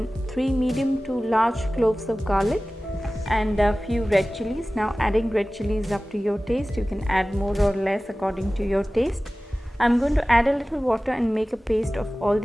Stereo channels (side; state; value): both; normal; correlation 0.97